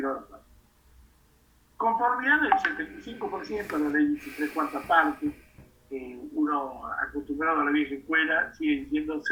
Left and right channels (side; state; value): both; identical; correlation 1.00